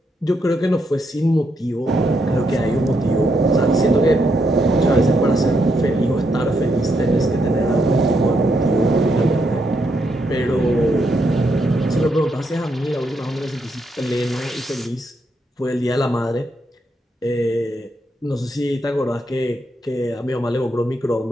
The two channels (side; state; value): both; normal; correlation 0.78